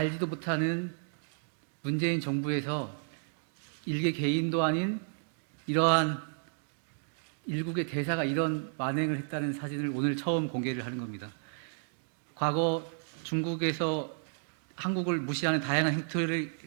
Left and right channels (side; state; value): left; silent; digital silence